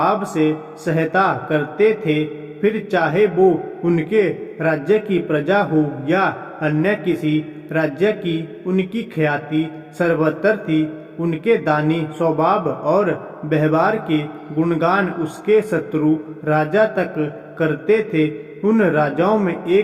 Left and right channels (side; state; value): both; identical; correlation 1.00